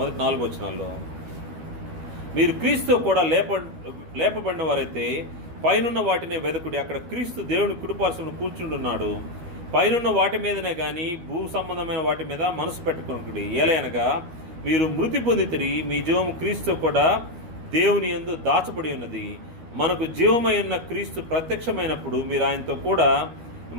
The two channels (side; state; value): left; late; 13 ms